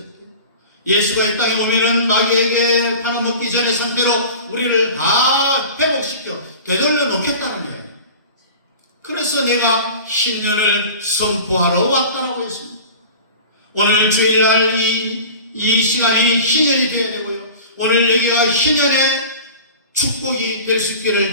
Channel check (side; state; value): both; inverted; correlation -0.38